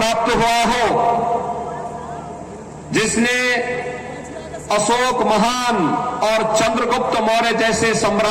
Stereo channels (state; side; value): identical; both; correlation 1.00